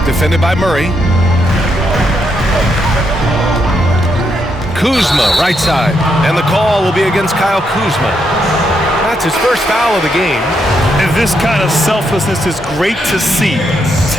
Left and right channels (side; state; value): both; normal; correlation 0.79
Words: defended by Murray. Kuzma, right side. And the call will be against Kyle Kuzma. That's his first foul of the game. And this kind of selflessness is great to see.